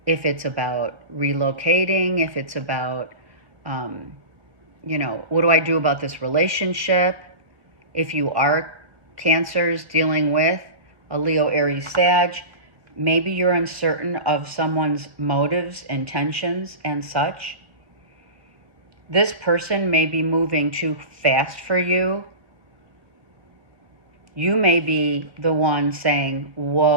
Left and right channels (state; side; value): late; left; 1.5 ms